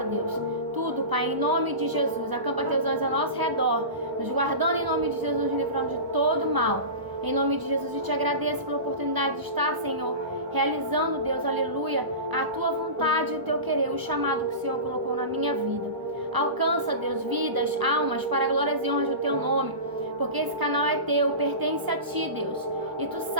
Deus. Tudo, Pai, em nome de Jesus. Acampa Teus anjos ao nosso redor, nos guardando em nome de Jesus, nos livrando de todo mal. Em nome de Jesus, eu te agradeço pela oportunidade de estar, Senhor, realizando, Deus, aleluia, a Tua vontade e o Teu querer, o chamado que o Senhor colocou na minha vida. Alcança, Deus, vidas, almas, para glórias e honras do Teu nome, porque esse canal é Teu, pertence a Ti, Deus. E Tu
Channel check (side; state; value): left; late; 1.0 ms